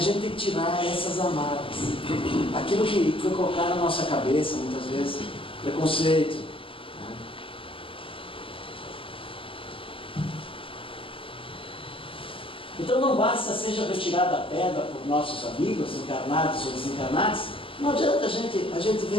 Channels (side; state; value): right; late; 0.26 ms